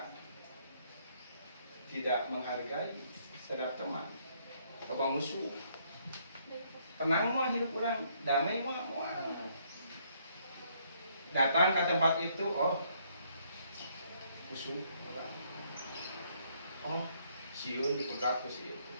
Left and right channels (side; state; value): both; inverted; correlation -0.69